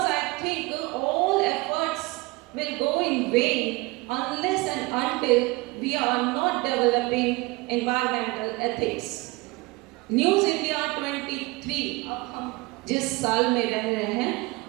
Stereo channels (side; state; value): left; quieter; 23.5 dB